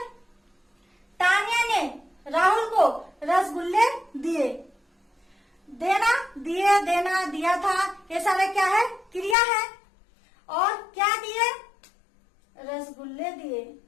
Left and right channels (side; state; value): right; drops out; at 9.3 s